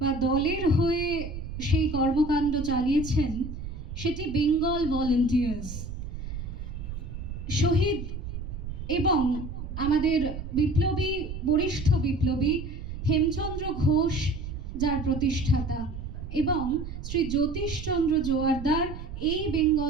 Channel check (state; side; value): noise; right; rumble, 8 dB below the sound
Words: বা দলের হয়ে সেই কর্মকাণ্ড চালিয়েছেন সেটি বেঙ্গল ভলেন্টিয়ার্স। শহীদ এবং আমাদের বরিষ্ঠ বিপ্লবী হেমচন্দ্র ঘোষ, যার প্রতিষ্ঠাতা, এবং শ্রী জ্যোতিষচন্দ্র জোয়ারদার এই